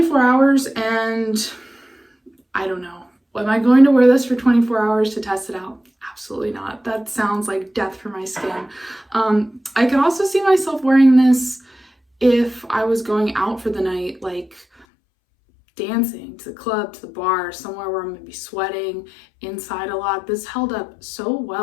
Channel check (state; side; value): drops out; right; at 14.9 s